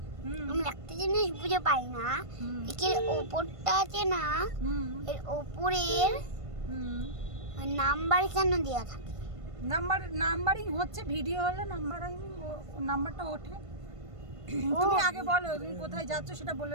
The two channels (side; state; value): left; late; 1.5 ms